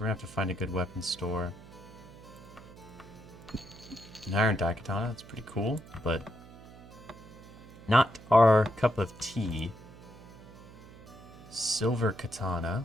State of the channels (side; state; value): right; noise; hum, 19 dB below the sound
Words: gonna have to find a good weapons store. An iron daikatana, that's pretty cool, but not our cup of tea. Silver katana.